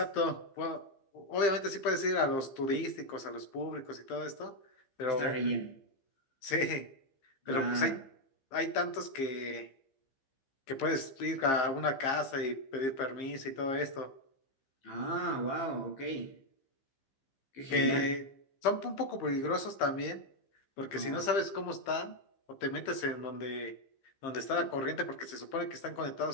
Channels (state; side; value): late; right; 15 ms